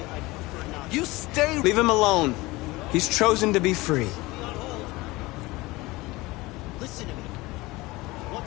You stay... Leave him alone. He's chosen to be free. Listen to me. What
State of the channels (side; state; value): right; quieter; 21.3 dB